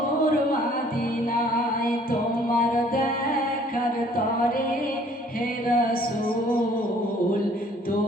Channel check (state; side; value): normal; both; correlation 0.58